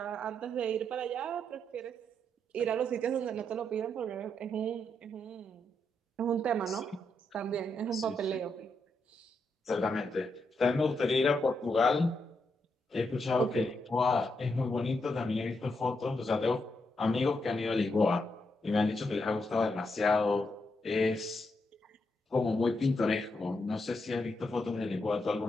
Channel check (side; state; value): both; normal; correlation 0.81